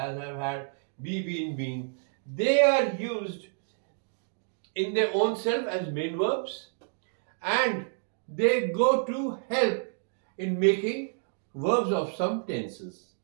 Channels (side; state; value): left; silent; digital silence